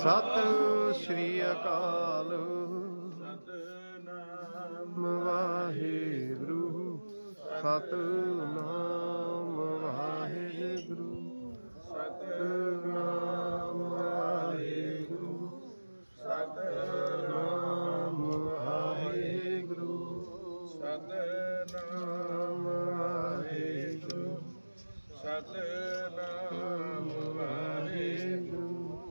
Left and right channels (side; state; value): both; inverted; correlation -1.00